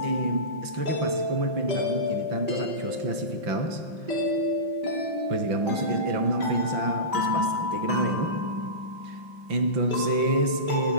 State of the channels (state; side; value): late; left; 5.8 ms